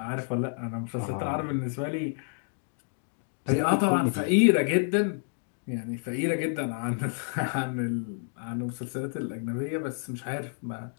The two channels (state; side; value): silent; right; 57 dB below the other